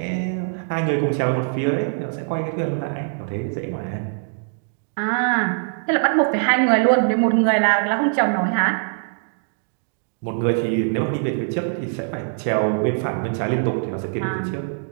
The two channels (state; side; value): silent; left; digital silence